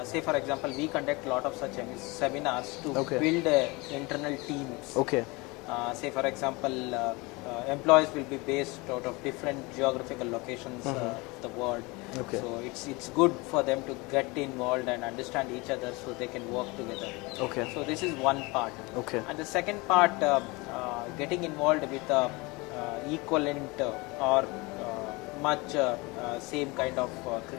Say for example, we conduct a lot of such seminars to Okay. build internal teams. Okay. Say for example, employees will be based out of different geographical locations of the world. Okay. So it's good for them to get involved and understand each other so they can work together. Okay. So this is one part. Okay. And the second part, getting involved with equivalent or much same kind of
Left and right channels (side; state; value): right; quieter; 25.2 dB